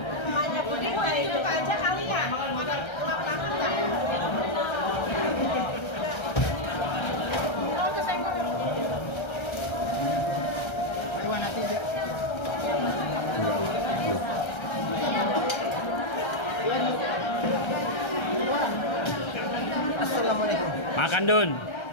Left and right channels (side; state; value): right; late; 1.3 ms